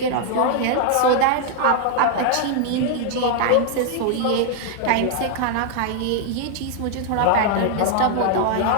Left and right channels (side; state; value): both; different; correlation 0.00